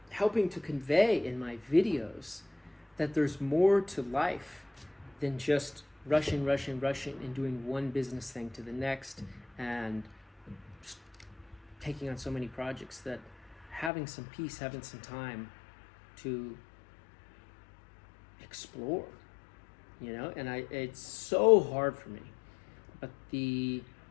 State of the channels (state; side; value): drops out; right; at 13.9 s